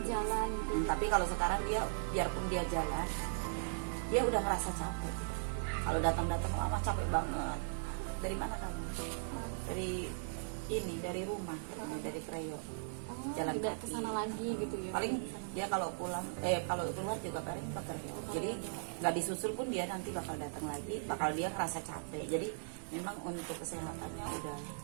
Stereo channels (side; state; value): left; silent; digital silence